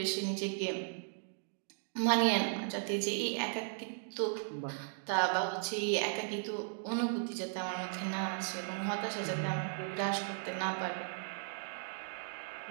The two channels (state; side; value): silent; left; digital silence